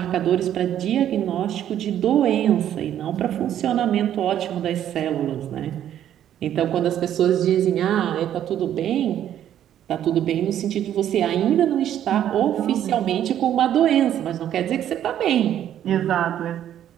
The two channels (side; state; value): left; quieter; 10.8 dB